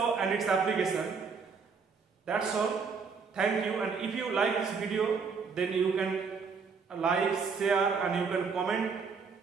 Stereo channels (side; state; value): left; quieter; 5.4 dB